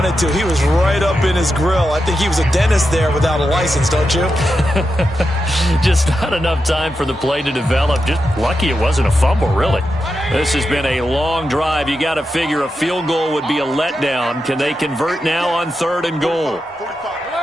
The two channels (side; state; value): both; normal; correlation 0.88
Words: to. He was right up in his grill. I think he was a dentist there without a license, don't you? Just not enough time for the play to develop. Just lucky it wasn't a fumble, really. This has been a long drive. You got to figure a field goal would be a letdown. Can they convert now on 3rd and goal?